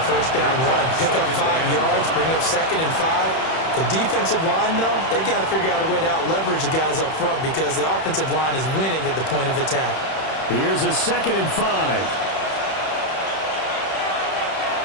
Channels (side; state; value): right; late; 31 ms